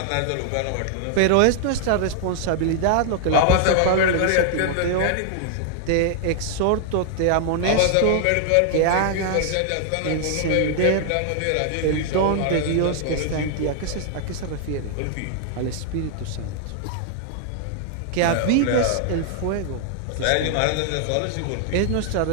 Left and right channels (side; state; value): both; different; correlation -0.01